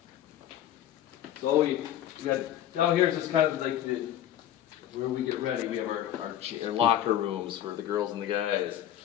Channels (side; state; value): right; quieter; 11.5 dB